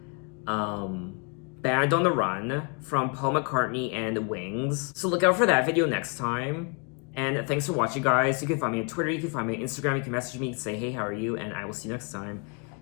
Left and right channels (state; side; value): quieter; right; 35.0 dB